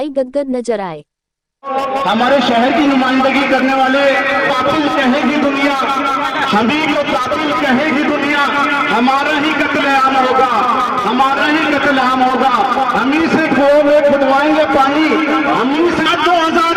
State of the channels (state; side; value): identical; both; correlation 1.00